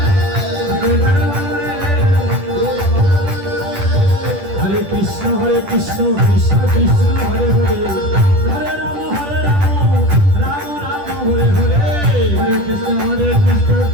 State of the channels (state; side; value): late; left; 10 ms